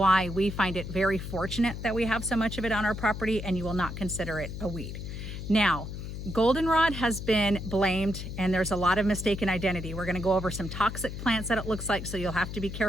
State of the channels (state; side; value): noise; left; hum, 7 dB below the sound